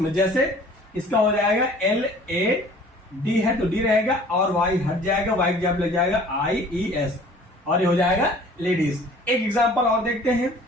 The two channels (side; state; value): both; normal; correlation 0.50